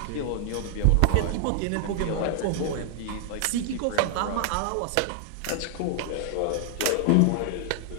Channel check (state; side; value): different; both; correlation 0.00